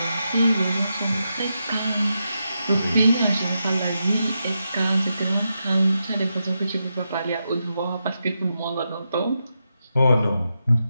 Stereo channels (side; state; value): both; inverted; correlation -0.86